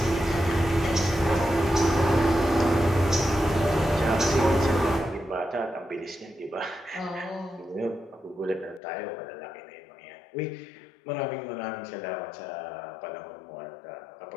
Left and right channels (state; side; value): drops out; right; at 8.8 s